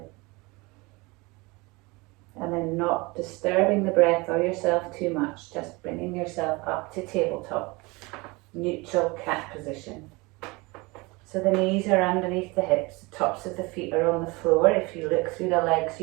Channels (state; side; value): quieter; left; 24.8 dB